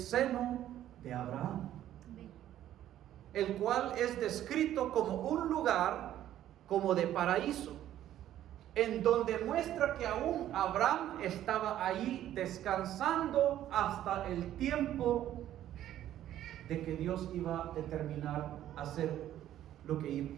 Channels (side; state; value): left; quieter; 12.2 dB